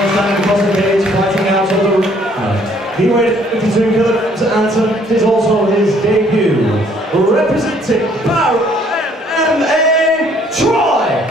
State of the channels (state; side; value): normal; both; correlation 0.62